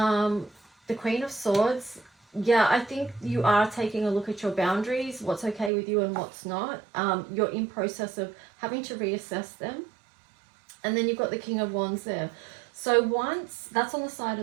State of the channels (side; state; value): left; drops out; at 5.7 s